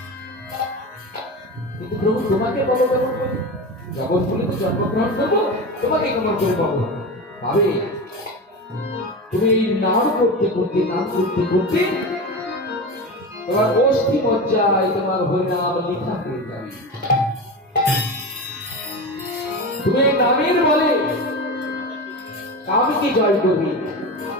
কিন্তু প্রভু তোমাকে পাবো কেমন করে? জগৎ বলে তো জন্মগ্রহণ করবো, তোমাকে কেমন করে পাবো? পাবে তুমি নাম করতে করতে, নাম করতে করতে তোমার অস্থি মজ্জায় তোমার হরিনাম লিখা হয়ে যাবে। তুমি নামের বলে কামকে জয় করবি,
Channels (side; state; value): both; normal; correlation 0.24